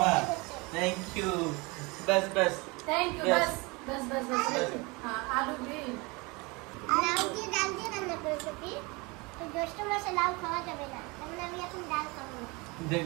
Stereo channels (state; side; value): quieter; left; 26.5 dB